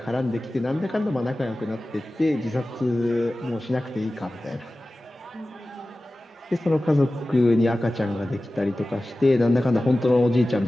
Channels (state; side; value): normal; both; correlation 0.96